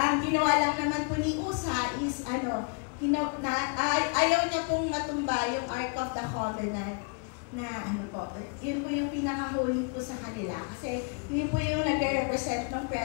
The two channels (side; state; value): right; quieter; 35.5 dB